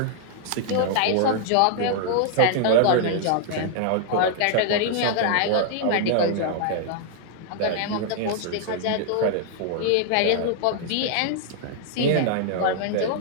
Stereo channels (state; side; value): different; both; correlation -0.01